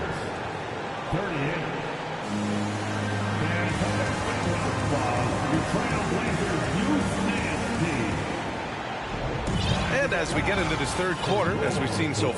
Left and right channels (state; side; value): identical; both; correlation 1.00